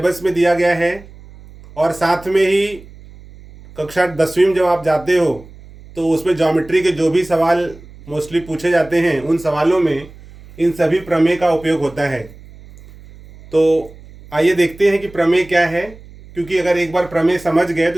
में दिया गया है और साथ में ही कक्षा 10वीं में जब आप जाते हो तो उसमें ज्योमेट्री के जो भी सवाल मोस्टली पूछे जाते हैं उन सवालों में इन सभी प्रमेय का उपयोग होता है। तो आइए देखते हैं कि प्रमेय क्या है, क्योंकि अगर एक बार प्रमेय समझ गए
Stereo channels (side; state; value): right; noise; hum, 20 dB below the sound